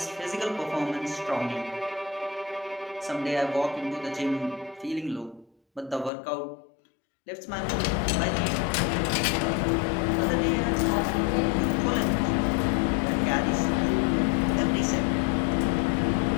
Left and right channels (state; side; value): drops out; right; at 6.1 s